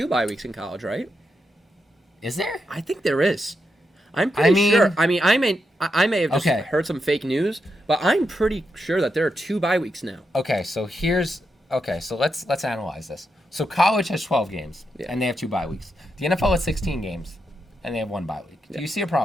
bye weeks in college, right? Is there? I think there is. I'm pretty sure. I mean, I may have just heard some fake news, but I'm pretty sure that there are 2 bye weeks now. Okay, so let's analyze this. So college has 12 games, and they have 2 bye weeks. The NFL has 16 games, and they have 1 bye week. Do you see a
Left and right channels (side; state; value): both; normal; correlation 0.84